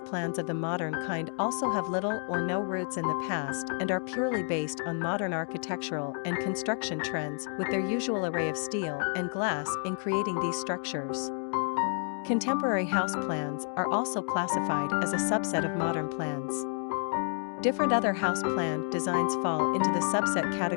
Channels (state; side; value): silent; right; 55 dB below the other